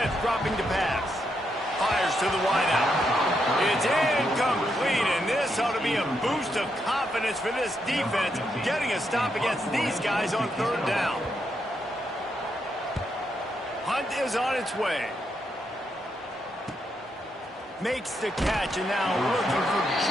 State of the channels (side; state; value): both; normal; correlation 0.80